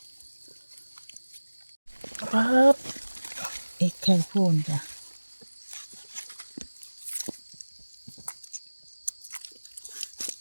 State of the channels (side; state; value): both; inverted; correlation -1.00